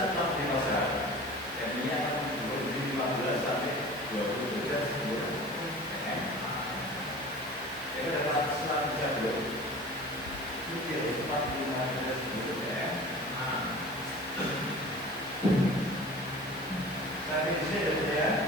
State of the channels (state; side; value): normal; both; correlation 0.40